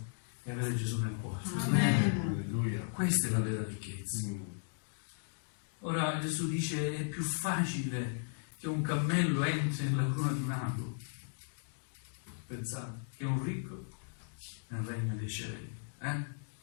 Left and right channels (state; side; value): silent; right; digital silence